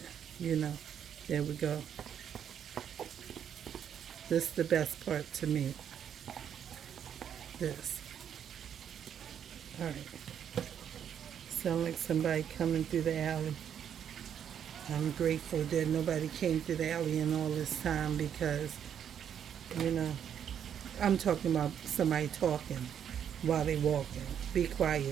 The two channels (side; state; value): left; quieter; 8.8 dB